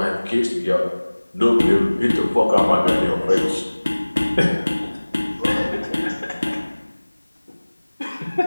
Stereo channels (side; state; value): both; inverted; correlation -1.00